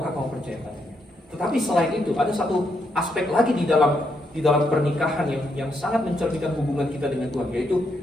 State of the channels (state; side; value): normal; both; correlation 0.78